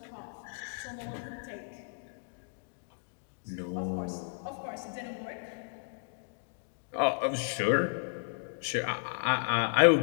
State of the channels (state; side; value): silent; right; digital silence